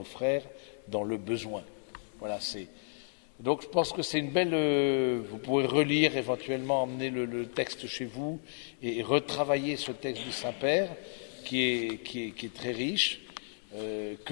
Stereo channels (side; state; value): right; silent; 56 dB below the other